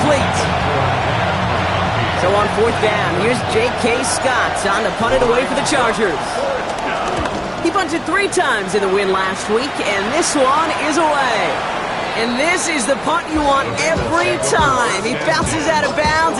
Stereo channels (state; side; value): identical; both; correlation 1.00